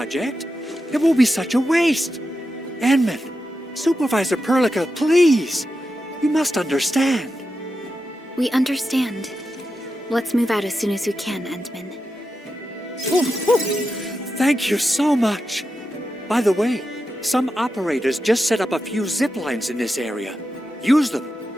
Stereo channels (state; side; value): normal; both; correlation 0.89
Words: It will be such a waste. Endman, Supervisor Perlica, please. You must understand. We understand. Let's move out as soon as we can, Endman. Thank you so much. By the way, some operators just set up a few zip lines in this area. Use them.